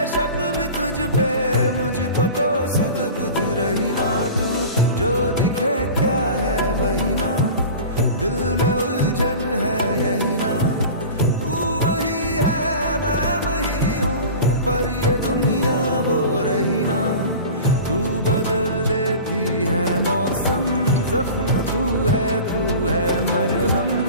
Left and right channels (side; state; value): both; inverted; correlation -0.36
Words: शक भी तुझ पे मुझको तो सुध बुध रही ना तू जो दिखे क्या है वही ना दिल में उलझन है यही ना तू वही है मैं वही हूँ पर ये दुनिया वो रही ना तू बदल देती है मौसम जख्म तू है मरहम